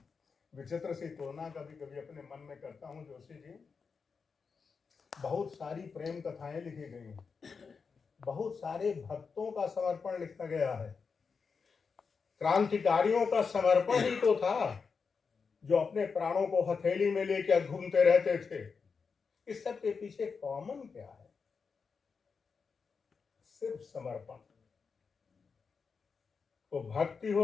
विचित्र सी तुलना कभी कभी अपने मन में करता हूँ। जोशी जी, बहुत सारी प्रेम कथाएं लिखी गई हैं, बहुत सारे भक्तों का समर्पण लिखा गया है। क्रांतिकारियों का समर्पण ही तो था, जो अपने प्राणों को हथेली में लेकर घूमते रहते थे। इस सब के पीछे कॉमन क्या है? सिर्फ समर्पण। तो भक्ति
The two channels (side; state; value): right; quieter; 5.3 dB